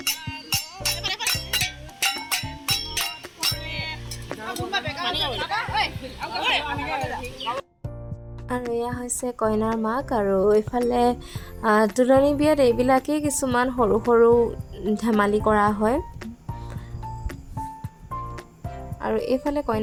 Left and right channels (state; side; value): identical; both; correlation 1.00